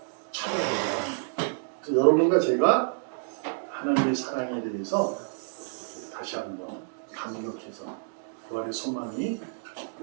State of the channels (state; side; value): silent; left; digital silence